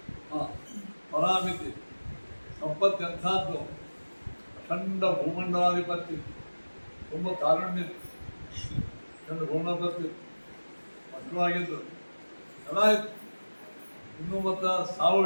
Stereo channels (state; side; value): inverted; both; correlation -1.00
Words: ಪರಾಮಿತಿ ಸಂಪತ್ತು ಎಂಥದ್ದು? ಅಖಂಡ ಭೂಮಂಡಲಾಧಿಪತಿ, ತುಂಬ ಕಾರುಣ್ಯ, ಅಖಂಡ ಭೂಮಂಡಲಾಧಿಪತಿ, ಮಕ್ಕಳಾಗಿದ್ದು ಎಲ್ಲ ಇತ್ತು. ಇನ್ನೂ ಮತ್ತು ಸಾವು